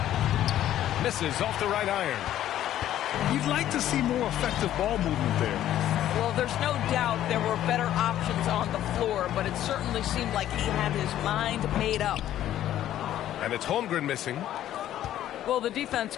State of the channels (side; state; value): right; quieter; 12.2 dB